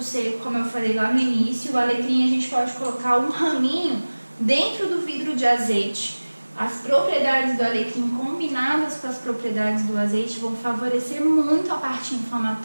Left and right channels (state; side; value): inverted; both; correlation -1.00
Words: seco, como eu falei lá no início. O alecrim a gente pode colocar um raminho dentro do vidro de azeite. As propriedades do alecrim combinadas com as propriedades do azeite vão favorecer muito a parte